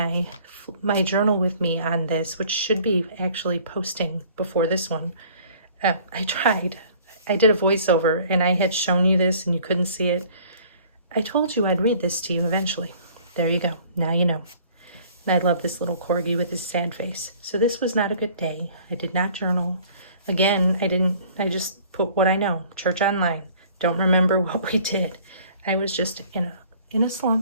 journal with me on this, which should be actually posting before this one, I tried. I did a voiceover, and I had shown you this, and you couldn't see it. I told you I'd read this to you eventually. There you go. Now you know. And I love this little corgi with his sad face. So this was not a good day. I did not journal. Again, I just put what I know. Church online. Don't remember what we did. I was just in a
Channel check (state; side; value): inverted; both; correlation -0.53